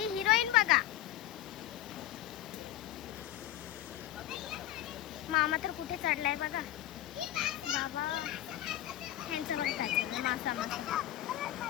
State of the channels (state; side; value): quieter; right; 13.7 dB